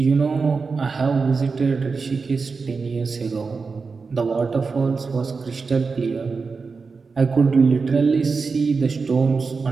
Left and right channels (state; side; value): quieter; left; 4.7 dB